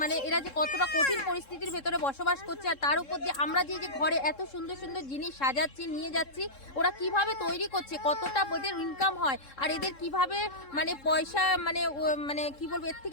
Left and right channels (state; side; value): late; right; 3.7 ms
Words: মানে এরা যে কতটা কঠিন পরিস্থিতির ভেতরে বসবাস করছে, আর তার উপর যে আমরা যে ঘরে এত সুন্দর সুন্দর জিনিস সাজাচ্ছি, নিয়ে যাচ্ছি, ওরা কিভাবে তৈরি করছে, কতটা ওদের ইনকাম হয়, আর এদের কিভাবে মানে পয়সা মানে কি বলবো, এর